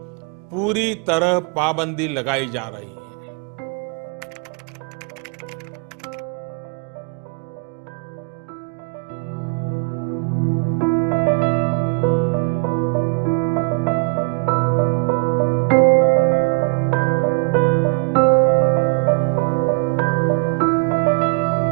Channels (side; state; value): left; quieter; 34.0 dB